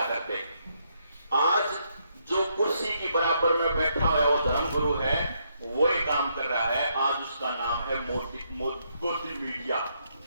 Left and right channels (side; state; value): both; inverted; correlation -0.76